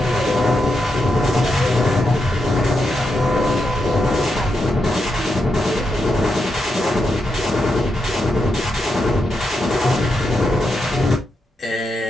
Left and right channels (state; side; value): normal; both; correlation 0.84